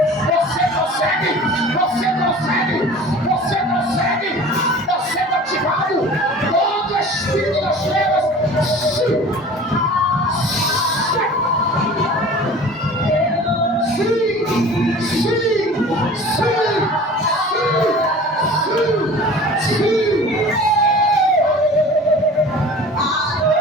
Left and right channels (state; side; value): normal; both; correlation 0.42